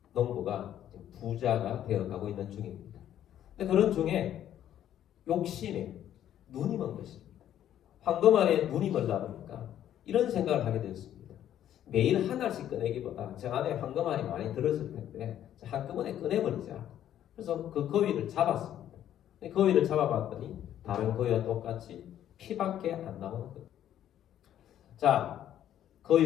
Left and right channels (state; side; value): quieter; right; 11.1 dB